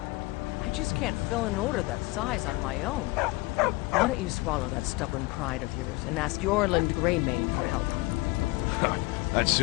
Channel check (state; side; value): quieter; right; 22.6 dB